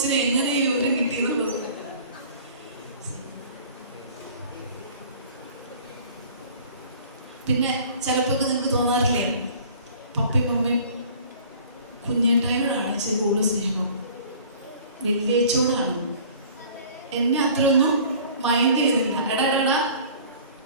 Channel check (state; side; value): inverted; both; correlation -0.47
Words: എങ്ങനെ ഈ വിവരം കിട്ടിയെന്നുള്ളത്. പിന്നെ ചിലപ്പോ നിങ്ങൾക്ക് തോന്നാറില്ലേ, പപ്പയും മമ്മിയും കുഞ്ഞേട്ടായോടാണ് ഇച്ചിരി കൂടുതൽ സ്നേഹം, വലിയേച്ചോടാണ്. എന്നെ അത്രയൊന്നും മൈൻഡ് ചെയ്യുന്നില്ല. എടാ